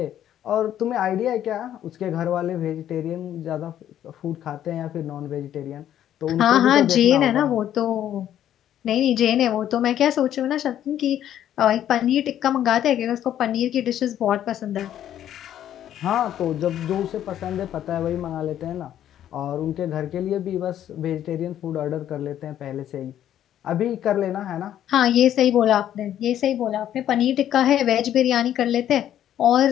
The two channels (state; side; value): quieter; right; 11.1 dB